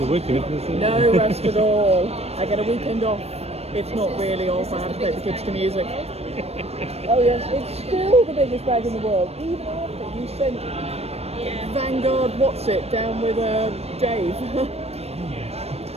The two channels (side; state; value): left; late; 0.30 ms